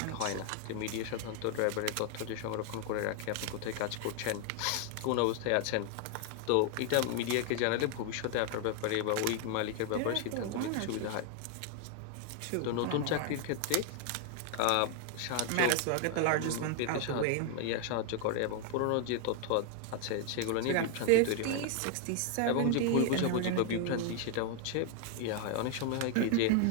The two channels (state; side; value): different; both; correlation 0.00